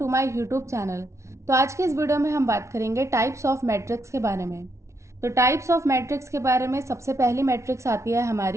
my YouTube channel. तो आज के इस वीडियो में हम बात करेंगे टाइप्स ऑफ मैट्रिक्स के बारे में। तो टाइप्स ऑफ मैट्रिक्स के बारे में सबसे पहली मैट्रिक्स आती है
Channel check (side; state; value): left; late; 0.14 ms